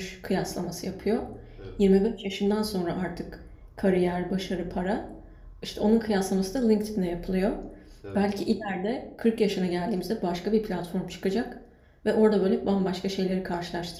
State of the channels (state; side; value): identical; both; correlation 1.00